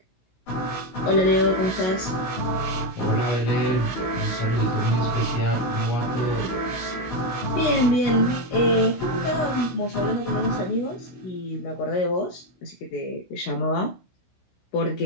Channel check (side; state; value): right; late; 16 ms